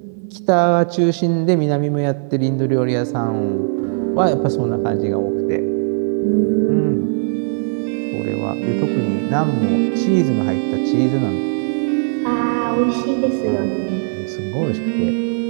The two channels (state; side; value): silent; left; digital silence